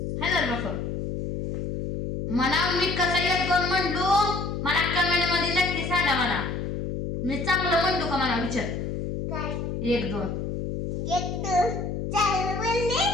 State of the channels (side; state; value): left; noise; hum, 4 dB below the sound